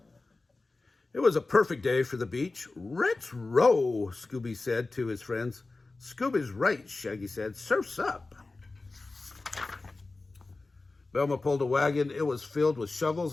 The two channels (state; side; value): quieter; right; 3.4 dB